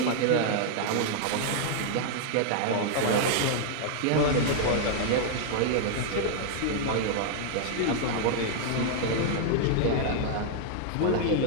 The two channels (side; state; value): both; different; correlation -0.01